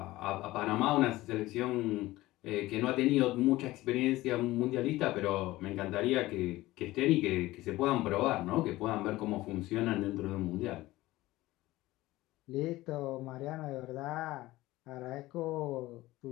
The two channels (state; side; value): quieter; right; 17.8 dB